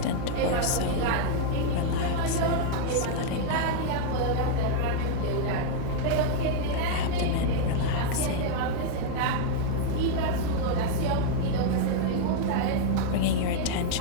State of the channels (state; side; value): different; both; correlation -0.01